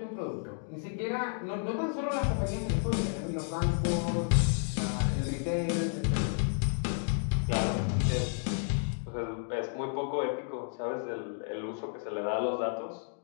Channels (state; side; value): silent; right; 57 dB below the other